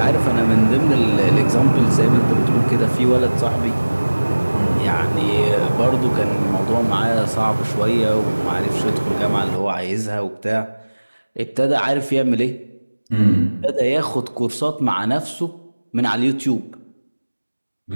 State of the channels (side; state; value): both; inverted; correlation -1.00